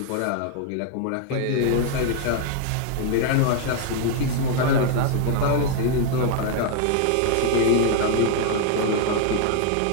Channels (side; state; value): both; different; correlation 0.00